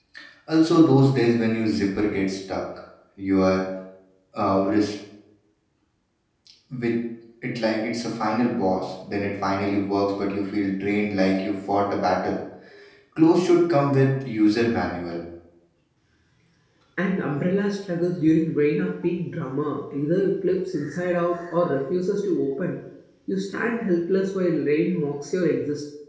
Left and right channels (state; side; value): identical; both; correlation 1.00